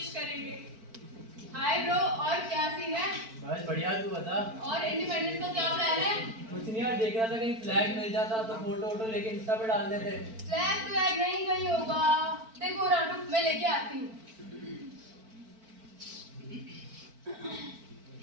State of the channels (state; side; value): late; left; 4.5 ms